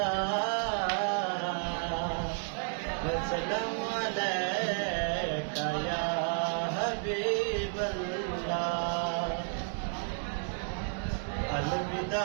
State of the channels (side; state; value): left; silent; 56 dB below the other